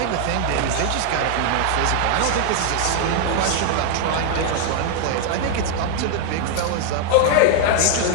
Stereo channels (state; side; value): different; both; correlation 0.00